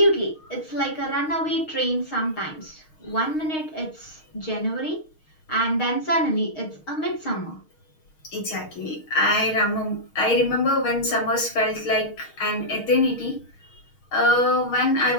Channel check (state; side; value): late; right; 6.4 ms